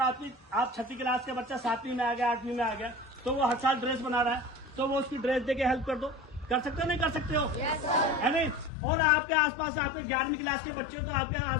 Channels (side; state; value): right; drops out; at 8.7 s